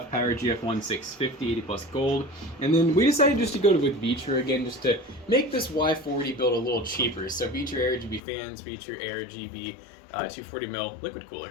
Power GF1 650, 80 plus gold, and then we decided just to go with Vitre again, just to make this Y40 build a little cheaper. So Vitre AirGB fans, Vitre AirGB 240mm liquid cooler.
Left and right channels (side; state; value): right; drops out; at 8.2 s